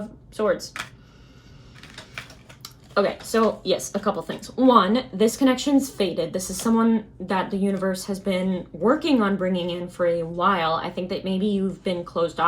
Swords. Okay, so yes, a couple things. One, this connection's faded. This is someone that the universe has been working on bringing in for a while. I think that maybe you've been closed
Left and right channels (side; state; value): both; identical; correlation 1.00